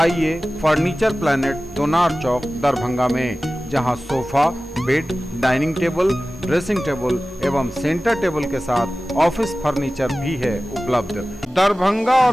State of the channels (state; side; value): normal; both; correlation 0.96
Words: फर्नीचर प्लैनेट, दोनार चौक, दरभंगा में, जहां sofa, bed, dining table, dressing table एवं सेंटर टेबल के साथ ऑफिस फर्नीचर भी है उपलब्ध। दरभंगा